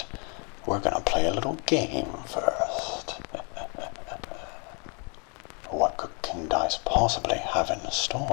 We're gonna play a little game first. What could King Dice possibly have in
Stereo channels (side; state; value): right; quieter; 35.6 dB